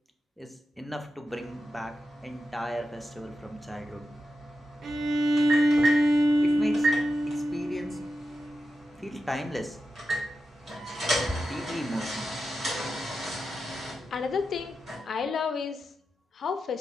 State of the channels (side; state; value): both; normal; correlation 0.90